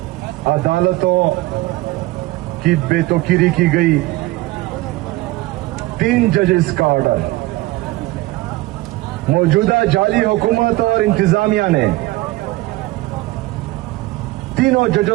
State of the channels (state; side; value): quieter; left; 19.4 dB